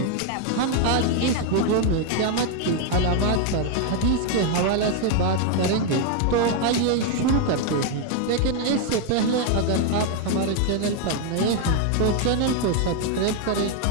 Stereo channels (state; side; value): different; both; correlation 0.01